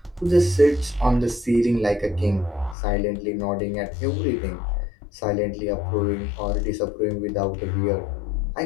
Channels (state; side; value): drops out; right; at 2.8 s